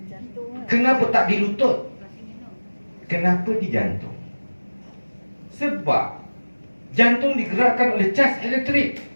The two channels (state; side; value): inverted; both; correlation -1.00